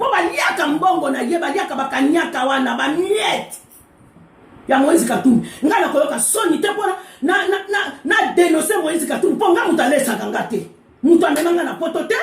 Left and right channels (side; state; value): both; identical; correlation 1.00